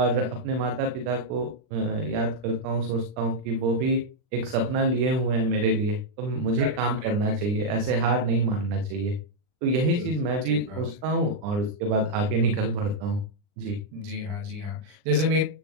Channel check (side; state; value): left; late; 39 ms